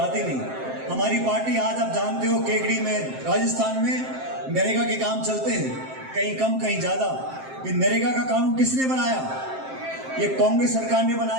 नहीं। हमारी पार्टी आज आप जानते हो केकड़ी में, राजस्थान में नरेगा के काम चलते हैं, कहीं कम कहीं ज्यादा। ये नरेगा का कानून किसने बनाया? ये कांग्रेस सरकार ने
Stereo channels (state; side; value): late; left; 7.6 ms